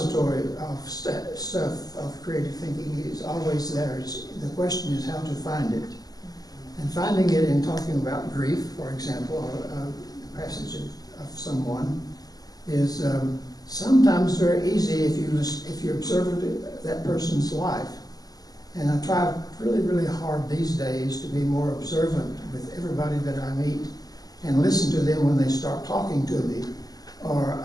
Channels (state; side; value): late; right; 0.18 ms